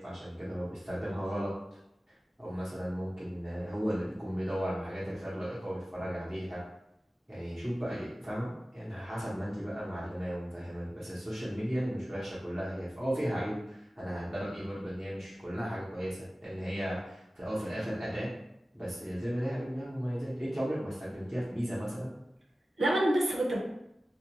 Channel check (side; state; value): both; normal; correlation 0.96